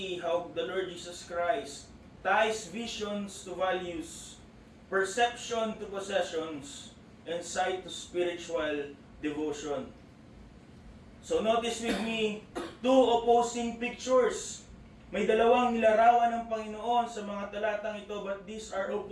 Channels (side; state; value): both; identical; correlation 1.00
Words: how the Lord Jesus Christ ties visions to values, perception to possessions, and sight to spiritual devotion. So notice with me, two opposing pictures. May dalawang nilarawan ng Panginoon sa mga talatang ito, but these are